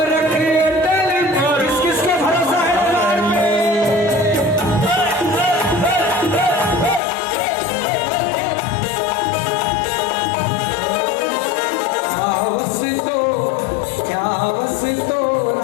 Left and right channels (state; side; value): drops out; right; at 7.0 s